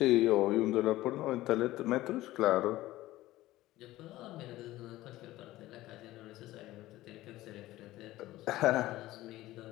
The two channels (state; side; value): quieter; right; 16.5 dB